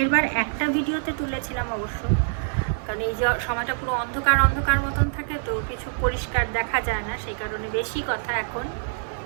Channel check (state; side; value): silent; left; digital silence